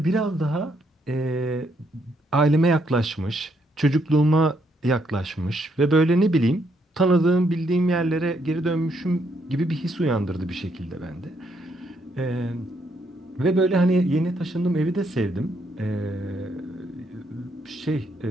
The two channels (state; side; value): normal; both; correlation 0.74